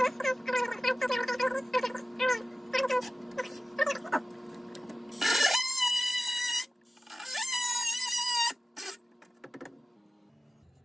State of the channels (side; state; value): both; normal; correlation 0.95